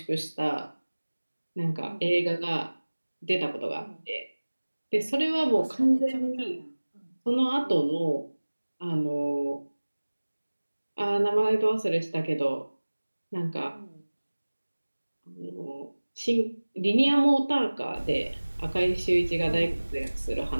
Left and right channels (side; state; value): both; inverted; correlation -1.00